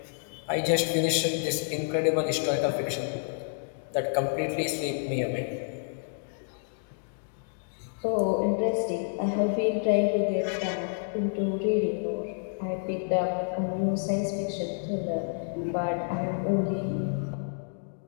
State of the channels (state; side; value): silent; right; digital silence